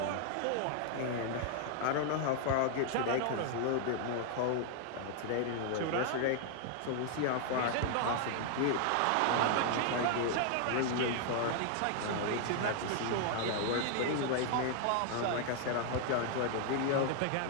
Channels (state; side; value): different; both; correlation 0.00